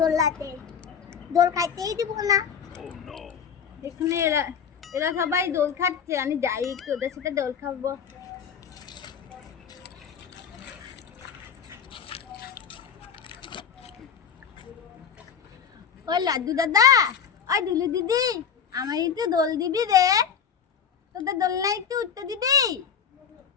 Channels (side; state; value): right; quieter; 7.3 dB